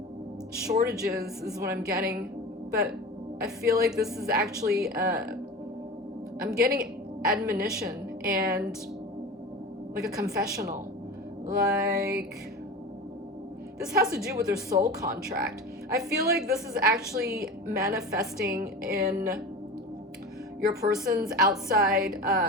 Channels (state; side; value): normal; both; correlation 0.31